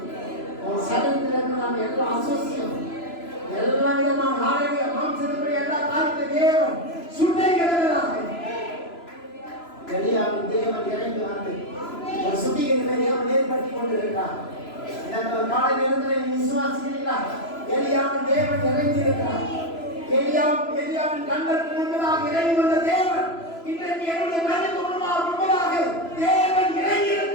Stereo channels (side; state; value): right; late; 3.0 ms